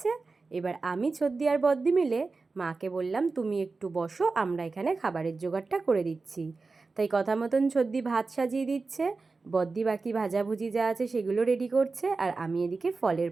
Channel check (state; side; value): quieter; left; 4.0 dB